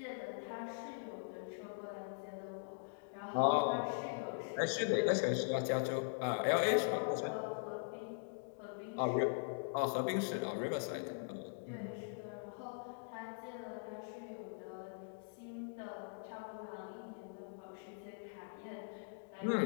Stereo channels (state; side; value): silent; right; digital silence